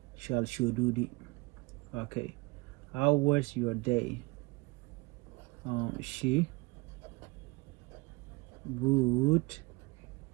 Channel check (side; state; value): left; quieter; 25.7 dB